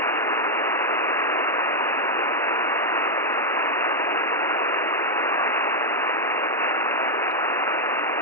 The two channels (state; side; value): normal; both; correlation 0.00